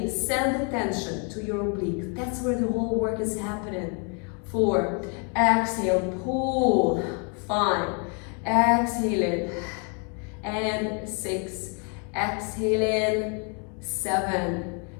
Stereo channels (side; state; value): right; quieter; 38.0 dB